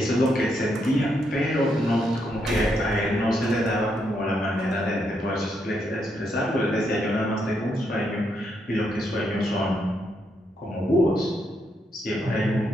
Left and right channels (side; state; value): both; normal; correlation 0.78